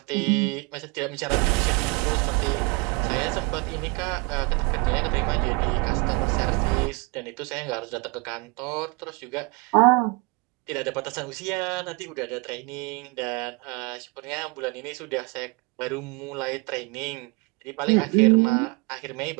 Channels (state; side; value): quieter; left; 27.5 dB